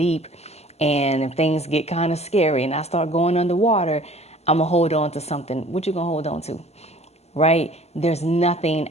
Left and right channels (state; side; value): late; right; 0.31 ms